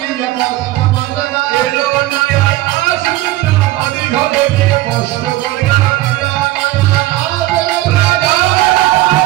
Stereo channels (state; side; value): quieter; left; 17.0 dB